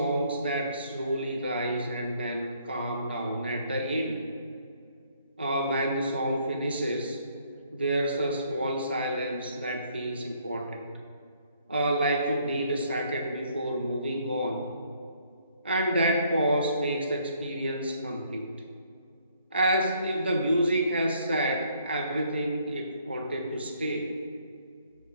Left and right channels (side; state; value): both; inverted; correlation -0.66